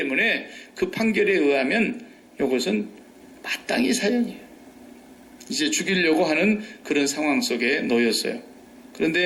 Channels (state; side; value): identical; both; correlation 1.00